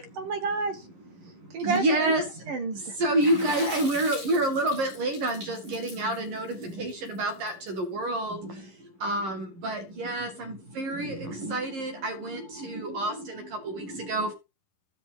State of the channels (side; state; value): left; late; 10 ms